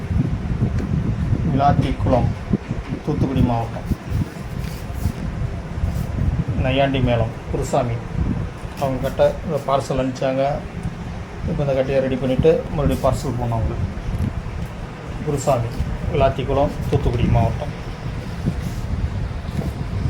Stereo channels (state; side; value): identical; both; correlation 1.00